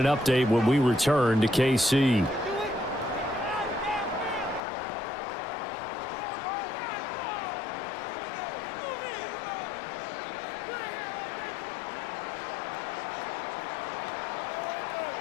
update when we return to KC.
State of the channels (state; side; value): drops out; right; at 4.6 s